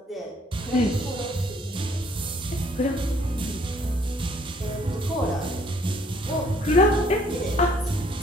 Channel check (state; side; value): normal; both; correlation 0.62